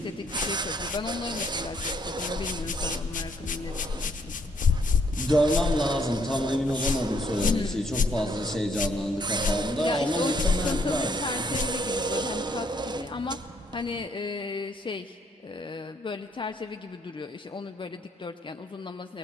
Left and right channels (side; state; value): both; normal; correlation 0.69